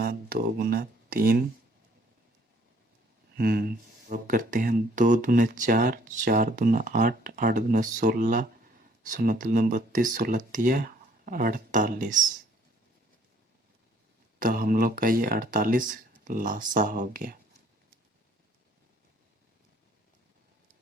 2 गुना 3। अब करते हैं 2 दूने 4, 4 दूना 8, 8 दूना 16, 16 दूना 32, 16 तिया 48। तो हम लोग का ये 48 लासा हो गया।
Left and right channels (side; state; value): both; normal; correlation 0.61